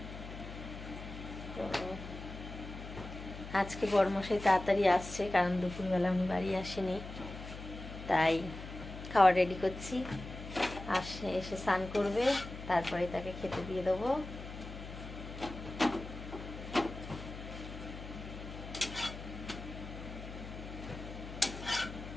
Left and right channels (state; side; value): noise; left; hum, 11 dB below the sound